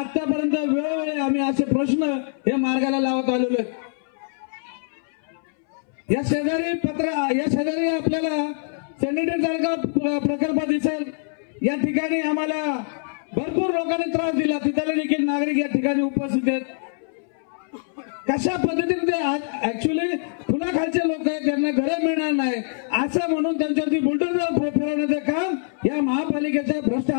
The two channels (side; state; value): right; silent; 63 dB below the other